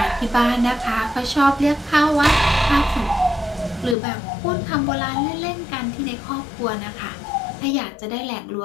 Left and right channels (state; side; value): drops out; right; at 4.0 s